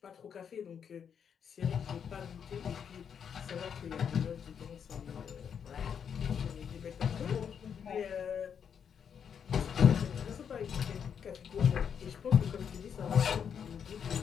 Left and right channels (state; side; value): quieter; right; 7.5 dB